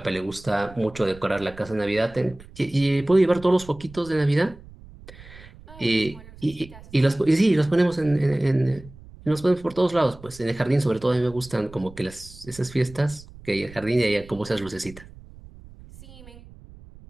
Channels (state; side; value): noise; right; rumble, 20 dB below the sound